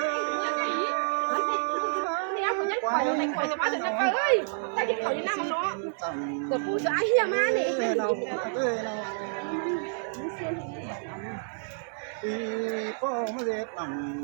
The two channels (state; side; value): silent; left; 59 dB below the other